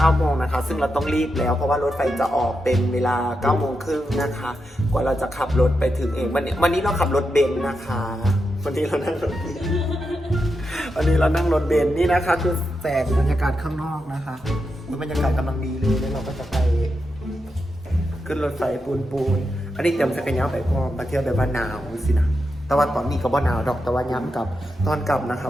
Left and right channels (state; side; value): normal; both; correlation 0.86